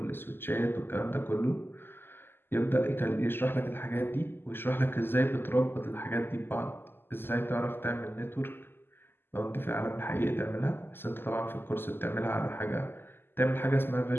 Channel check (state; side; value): late; right; 0.10 ms